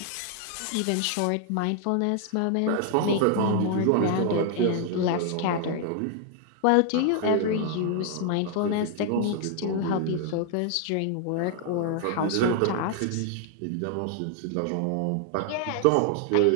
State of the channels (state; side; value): different; both; correlation 0.00